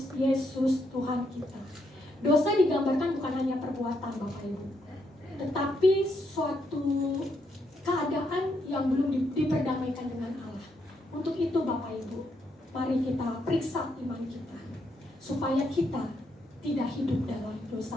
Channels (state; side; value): normal; both; correlation 0.77